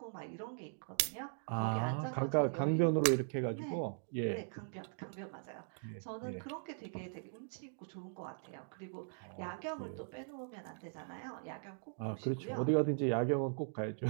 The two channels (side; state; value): left; silent; digital silence